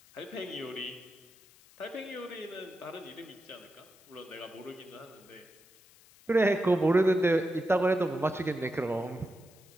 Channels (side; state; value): left; noise; hiss, 26 dB below the sound